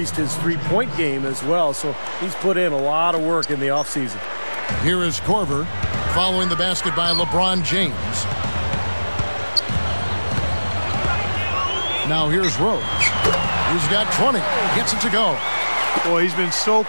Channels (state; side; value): inverted; both; correlation -1.00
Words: his three-point game as well, so he's put in a lot of work in the offseason. Here is Korver following the basket by LeBron James. Now here's Rose. He's got 20. Gets it to go. Boy, he's been so